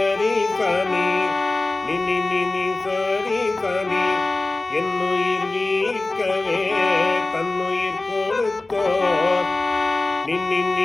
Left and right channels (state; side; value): quieter; right; 3.1 dB